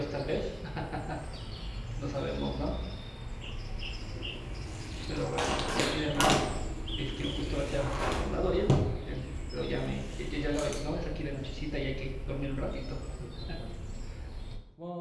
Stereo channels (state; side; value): identical; both; correlation 1.00